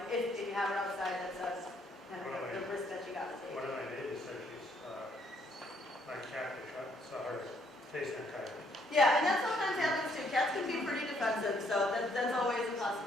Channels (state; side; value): normal; both; correlation 0.69